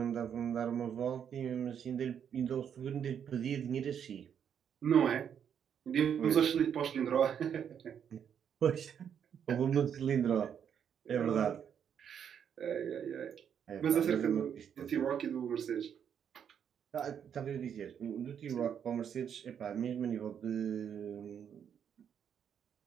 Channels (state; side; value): quieter; left; 8.2 dB